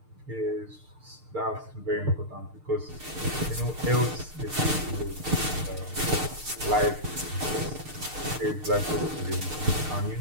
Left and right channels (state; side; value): late; left; 6.6 ms